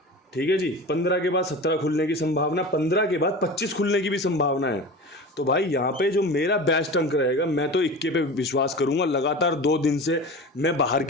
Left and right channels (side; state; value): both; normal; correlation 0.33